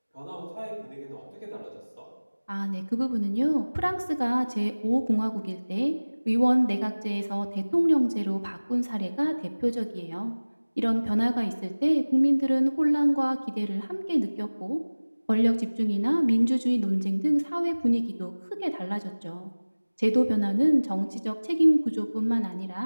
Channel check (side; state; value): both; inverted; correlation -1.00